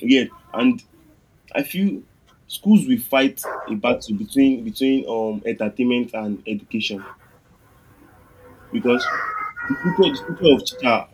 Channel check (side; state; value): both; identical; correlation 1.00